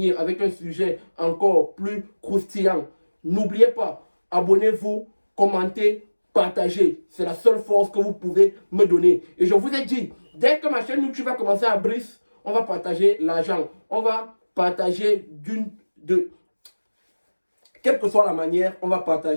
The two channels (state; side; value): inverted; both; correlation -1.00